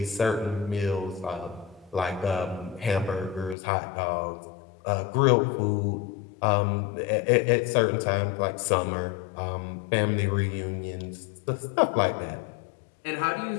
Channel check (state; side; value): drops out; right; at 3.6 s